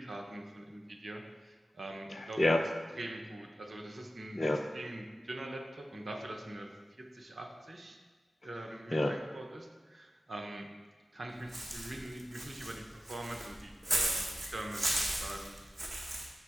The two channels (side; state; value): both; normal; correlation 0.94